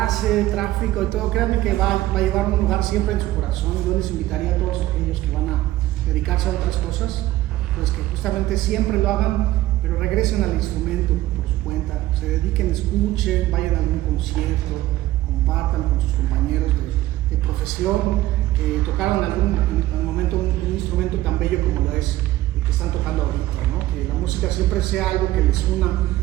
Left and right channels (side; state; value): left; quieter; 15.8 dB